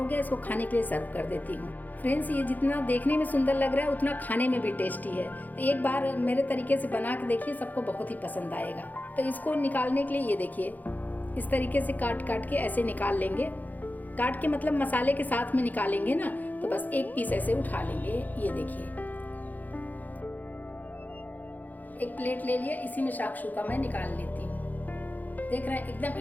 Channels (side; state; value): right; late; 0.082 ms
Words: गया, इसको खाने के लिए सर्व कर देती हूँ। फ्रेंड्स, ये जितना देखने में सुंदर लग रहा है उतना खाने में भी टेस्टी है। तो एक बार मेरे तरीके से बना के देखिए, सबको बहुत ही पसंद आएगा। तो इसको निकालने के लिए ये देखिए, इस तरीके से काट के ऐसे निकाल लेंगे। काट के मतलब मसाले के साथ में निकालेंगे ना, तो बस एक पीस ऐसे उठा लेंगे। ये देखिए, एक प्लेट ले लिया, इसी में शाकशुका मैं निकाल लेती हूँ। देख रहे हैं एकदम